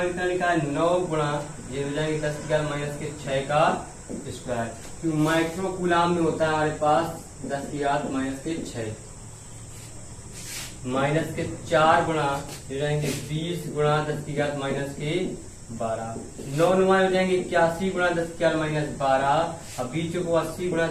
कितना लिखा है, 9 गुणा, ये हो जाएंगे 10 की घात -6 का स्क्वायर, क्यों माइक्रो कूलाम में होता है हमारे पास 10 की घात -6, -4 गुणा, ये जाएंगे 20 गुणा 10 की घात -12, 9 नुमा हो जाएंगे 81 गुणा 10 की घात -12, अब बीचों को 80 गुणा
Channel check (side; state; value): both; identical; correlation 1.00